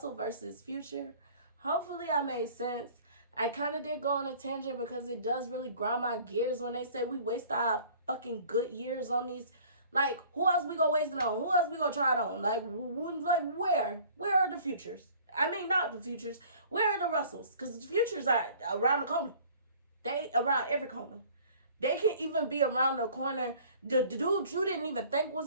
versus Future. Hopefully I made sense. I kind of did go on a tangent because it does really grind my gears when they say we waste our fucking good years on these. Like, who else we gonna waste it on? Who else we gonna try it on? Like where? Where are the futures? I mean, not the futures. Where are the Russells? Because the futures are around the corner. They around every corner. They can even be around the corner. The dude you didn't even think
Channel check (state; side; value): inverted; both; correlation -0.51